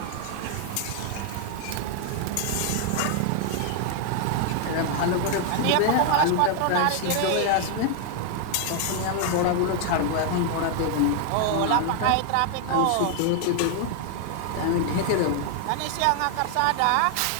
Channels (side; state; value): both; different; correlation 0.00